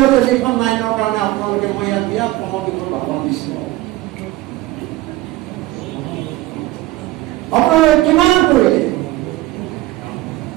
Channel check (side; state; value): left; quieter; 17.5 dB